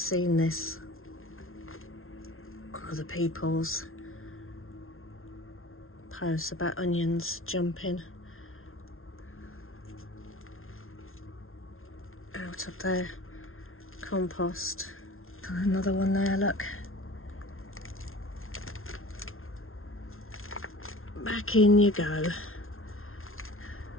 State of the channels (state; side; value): late; right; 0.61 ms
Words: this on other people's posts about onions jumping out of their compost. Another one there, look. Back in you go.